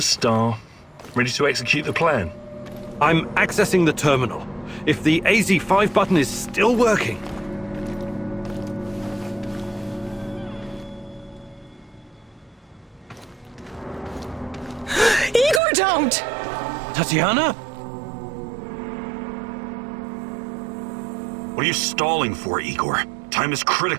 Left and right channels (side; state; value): left; drops out; at 15.6 s